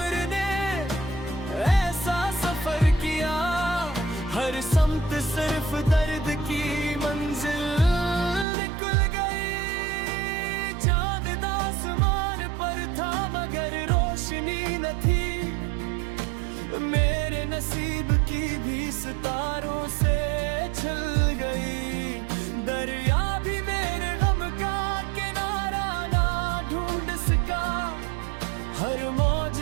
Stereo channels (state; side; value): drops out; left; at 8.5 s